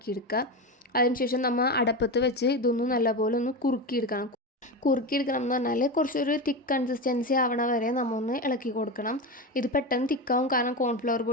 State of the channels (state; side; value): normal; both; correlation 0.19